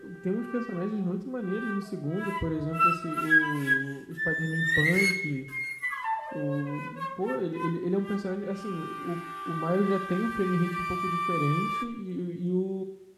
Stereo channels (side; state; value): both; identical; correlation 1.00